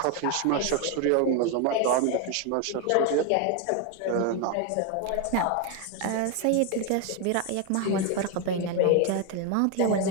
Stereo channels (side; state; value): both; different; correlation 0.01